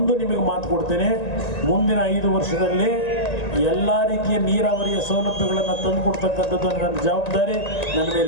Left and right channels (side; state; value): right; late; 1.9 ms